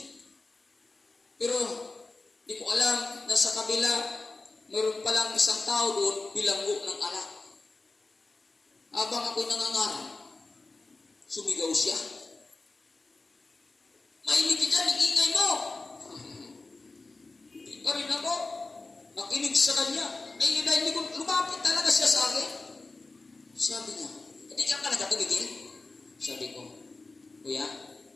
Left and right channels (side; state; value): right; quieter; 3.4 dB